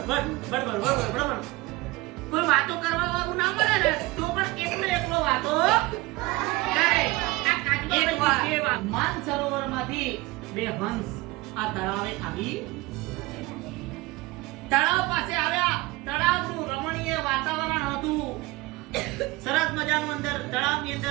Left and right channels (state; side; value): quieter; left; 21.0 dB